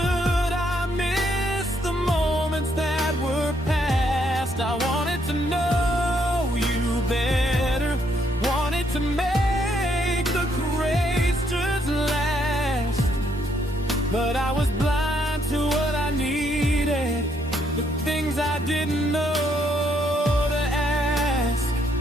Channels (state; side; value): normal; both; correlation 0.72